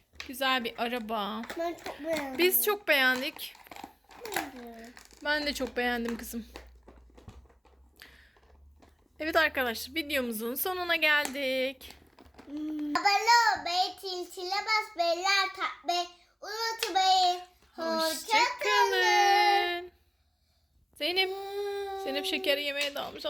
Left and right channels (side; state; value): both; identical; correlation 1.00